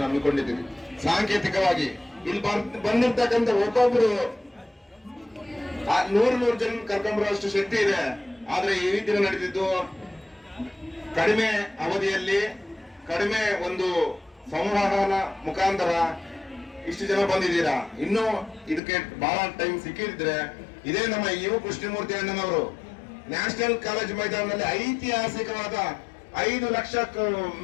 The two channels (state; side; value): drops out; right; at 18.8 s